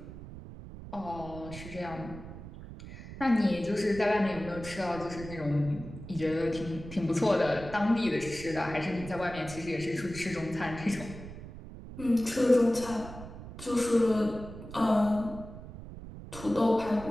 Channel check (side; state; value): right; noise; rumble, 13 dB below the sound